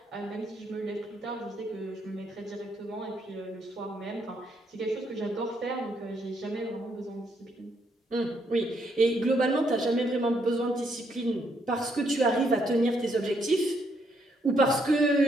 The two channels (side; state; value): both; normal; correlation 0.74